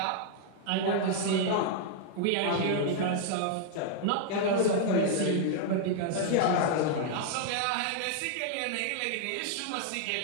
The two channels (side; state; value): both; different; correlation -0.01